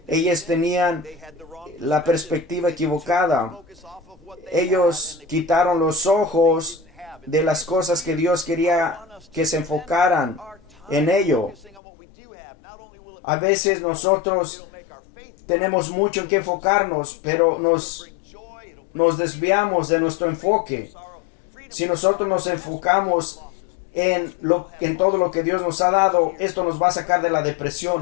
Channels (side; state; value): right; drops out; at 11.8 s